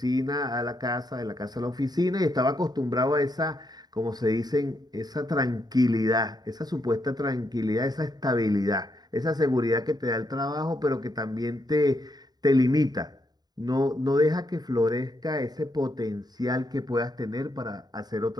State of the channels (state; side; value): late; left; 0.19 ms